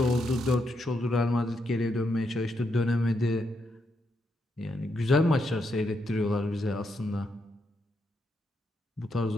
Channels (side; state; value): both; normal; correlation 0.80